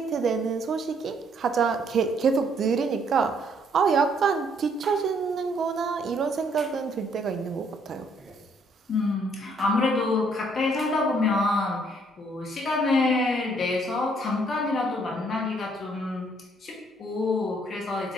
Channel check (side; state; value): both; normal; correlation 0.67